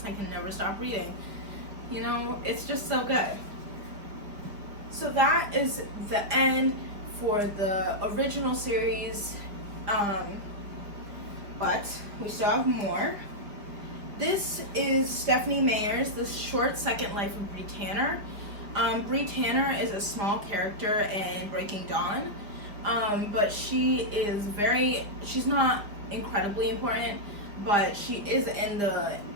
I can never stop reading. It's just so good. So that is the end for the original series, but we still have more. This is Stephanie Meyer's The Short Second Life of Bree Tanner. Bree Tanner is a small character in Breaking Dawn, but she's not incredibly important, but she is in the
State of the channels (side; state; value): left; late; 5.1 ms